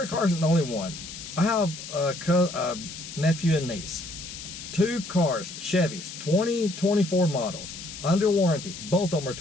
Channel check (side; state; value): left; noise; hiss, 11 dB below the sound